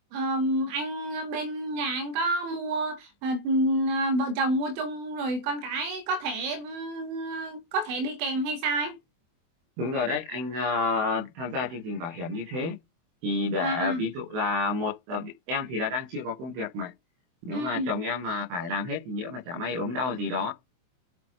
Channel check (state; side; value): late; left; 23 ms